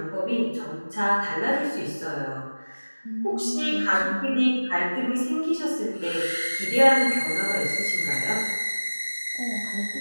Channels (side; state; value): both; inverted; correlation -1.00